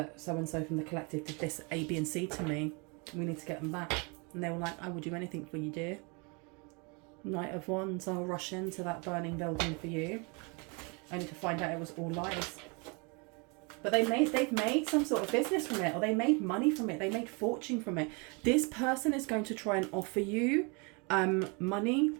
so-and-so from the collective did this A, B and C to me, we need to get them back. And they were like, I will do anything for you, dear. Knight of Wands, I'll rush into that burning building for you, only to find out it was all lies. But they've made some sort of business from it, or they made money from it, they made fortune from it. This person is going to try and offer you money.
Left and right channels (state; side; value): quieter; left; 31.6 dB